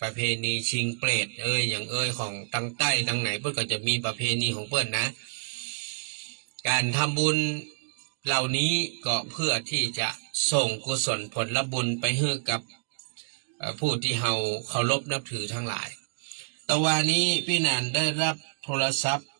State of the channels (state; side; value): silent; left; digital silence